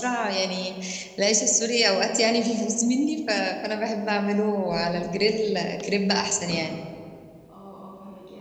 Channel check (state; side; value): identical; both; correlation 1.00